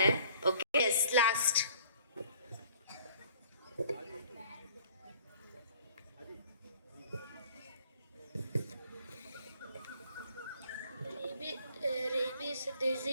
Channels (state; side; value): inverted; both; correlation -0.55